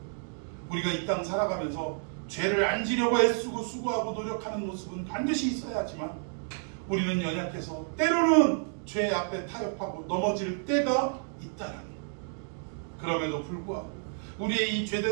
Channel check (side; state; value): left; silent; 58 dB below the other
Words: 우리가 이 땅 살아가면서 죄를 안 지려고 애쓰고 수고하고 노력하는 모습은 반드시 있어야 하지만 우리는 연약해서 때로는 죄 앞에 타협하고 넘어질 때가 있다는 거예요. 그럼에도 불구하고 우리의 이